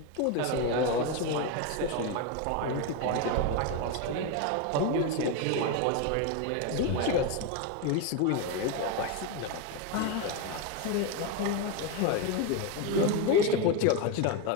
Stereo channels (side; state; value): both; different; correlation 0.03